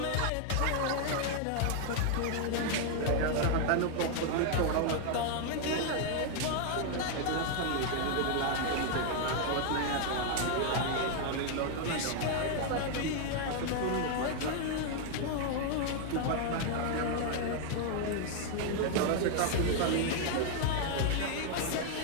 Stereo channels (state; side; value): different; both; correlation 0.00